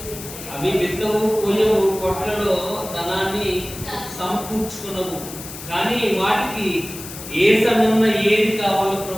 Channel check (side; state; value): left; noise; hiss, 12 dB below the sound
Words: అవి విత్తవు కొయ్యవు, కొట్లలో ధనాన్ని సమకూర్చుకునవు, కానీ వాటికి ఏ సమయంలో ఏది కావాలో